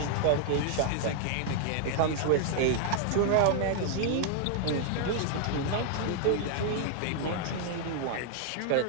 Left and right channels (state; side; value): different; both; correlation 0.00